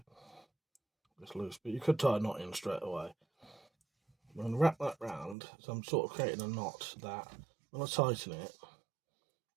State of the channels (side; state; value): left; drops out; at 5.4 s